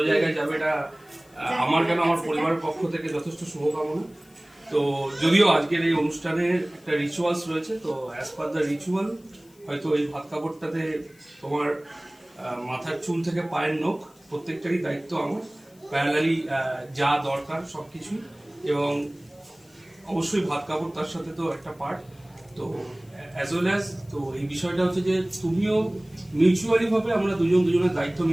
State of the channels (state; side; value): noise; left; hiss, 29 dB below the sound